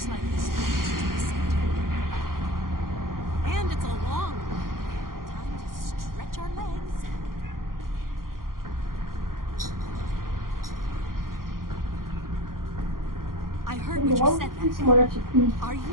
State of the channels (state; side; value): late; left; 0.91 ms